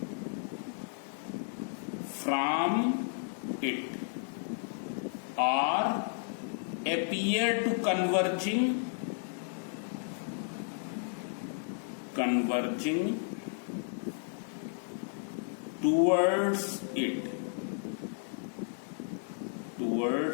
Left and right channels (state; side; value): silent; right; digital silence